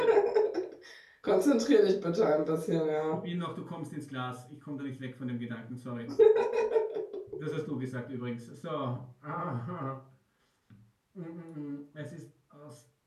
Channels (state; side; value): identical; both; correlation 1.00